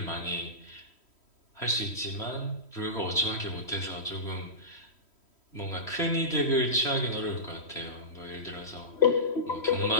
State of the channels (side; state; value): right; late; 3.1 ms